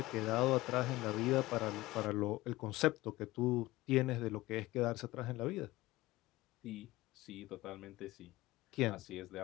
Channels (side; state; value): right; quieter; 18.6 dB